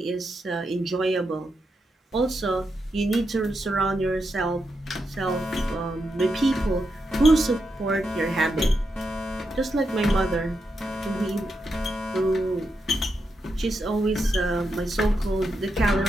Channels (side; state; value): both; normal; correlation 0.85